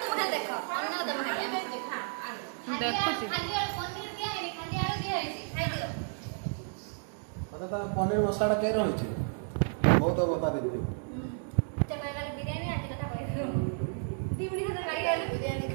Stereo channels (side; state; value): left; silent; 56 dB below the other